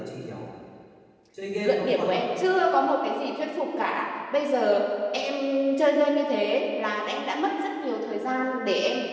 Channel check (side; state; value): both; identical; correlation 1.00